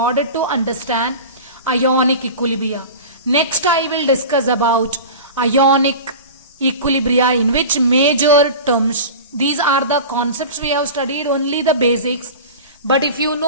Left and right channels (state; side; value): inverted; both; correlation -0.33